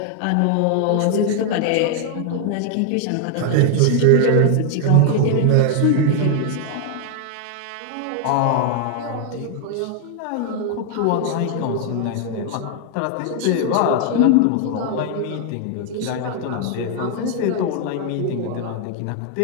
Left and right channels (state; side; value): different; both; correlation 0.00